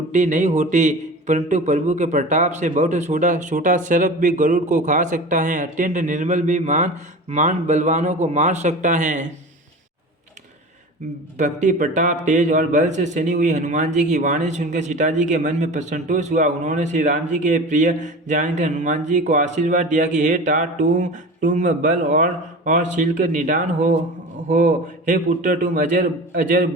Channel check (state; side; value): normal; both; correlation 0.34